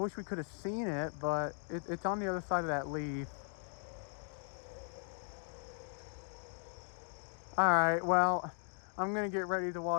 we could have seen it, but it's on the other side of that leaf. Alright, well, I'm gonna get ready to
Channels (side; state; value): right; silent; 53 dB below the other